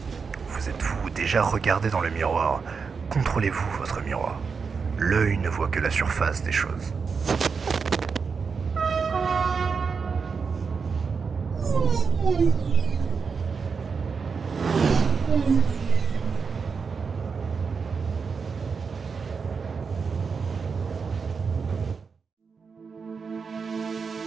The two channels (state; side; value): quieter; left; 5.4 dB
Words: Vous êtes-vous déjà regardé dans le miroir? Contrôlez-vous votre miroir. L'œil ne voit que la surface des choses.